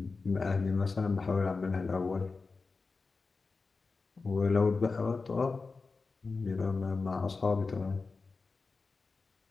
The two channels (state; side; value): quieter; right; 4.2 dB